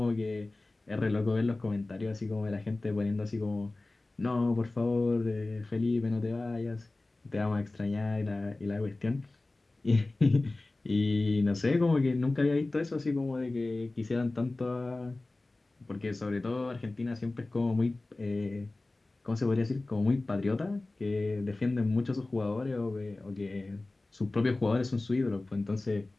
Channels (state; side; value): quieter; right; 3.0 dB